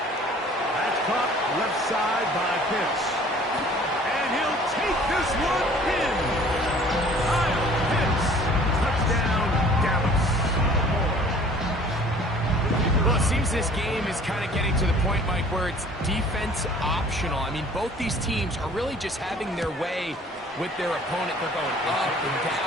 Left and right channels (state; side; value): normal; both; correlation 0.51